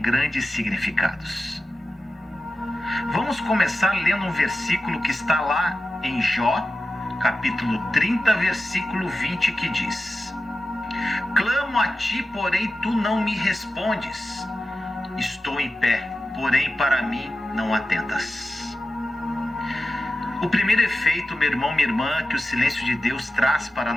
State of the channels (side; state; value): both; normal; correlation 0.92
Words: significados. Vamos começar lendo um versículo que está lá em Jó, capítulo 30, versículo 20, que diz: Clamo a ti, porém tu não me respondes. Estou em pé, porém para mim não atentas. O primeiro efeito, meu irmão, minha irmã, que o silêncio de Deus traz para a